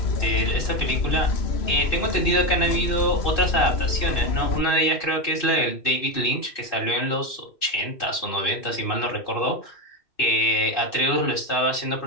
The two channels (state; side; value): late; right; 2.6 ms